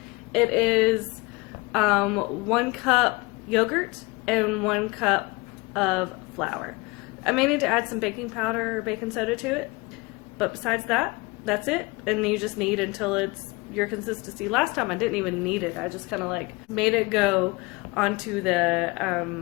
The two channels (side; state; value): right; quieter; 24.7 dB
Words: It is 1 cup yogurt and 1 cup of flour. I may need to add some baking powder or baking soda to it, but besides that, that's it. And you just knead until it's your consistency. Last time I didn't even knead it. I just kind of like made it go onto